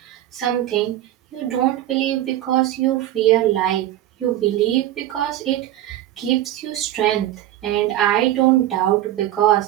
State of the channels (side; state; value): left; quieter; 13.6 dB